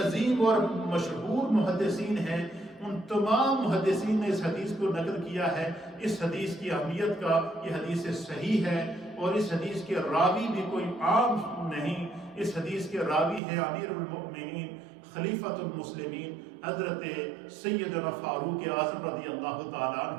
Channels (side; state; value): left; drops out; at 13.4 s